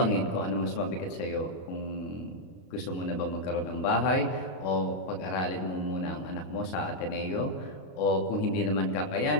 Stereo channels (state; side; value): late; right; 33 ms